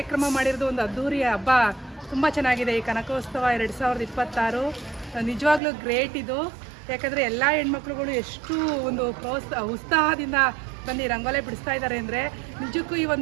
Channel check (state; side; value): drops out; left; at 5.6 s